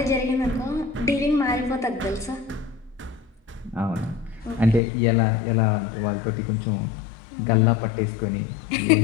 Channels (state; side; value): drops out; right; at 4.8 s